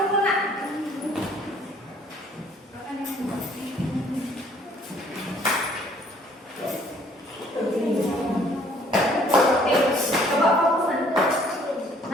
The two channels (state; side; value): normal; both; correlation 0.59